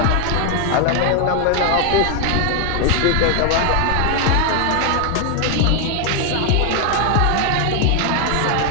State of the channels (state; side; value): different; both; correlation 0.00